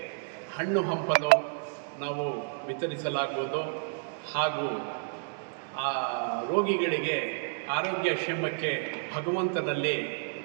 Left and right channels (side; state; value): left; silent; digital silence